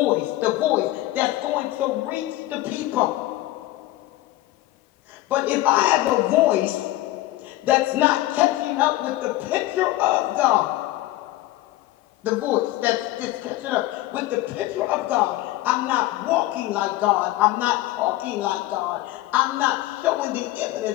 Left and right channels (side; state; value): right; quieter; 16.8 dB